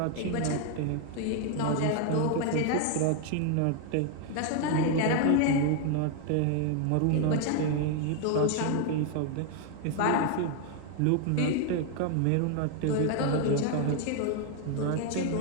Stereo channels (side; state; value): both; different; correlation 0.00